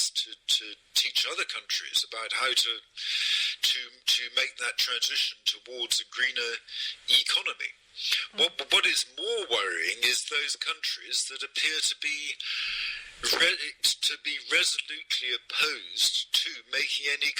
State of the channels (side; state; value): both; identical; correlation 1.00